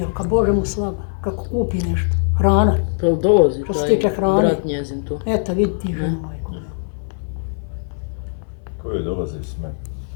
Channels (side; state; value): right; silent; 58 dB below the other